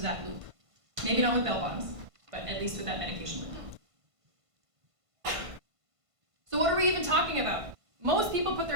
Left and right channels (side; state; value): left; late; 1.5 ms